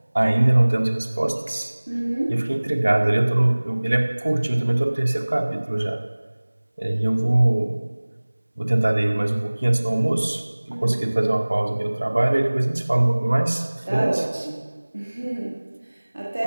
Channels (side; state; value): both; inverted; correlation -1.00